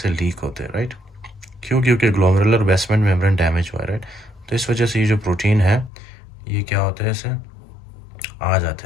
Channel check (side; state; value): right; drops out; at 5.9 s